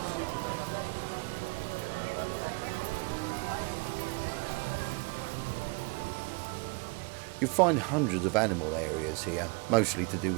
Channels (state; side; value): quieter; left; 29.8 dB